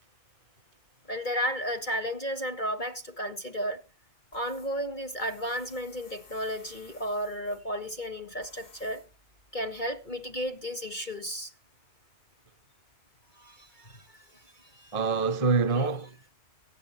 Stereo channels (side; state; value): right; late; 2.2 ms